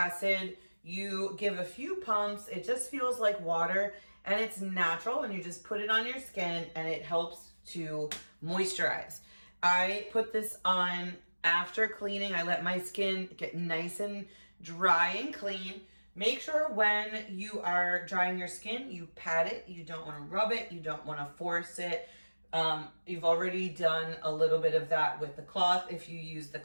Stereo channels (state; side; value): inverted; both; correlation -1.00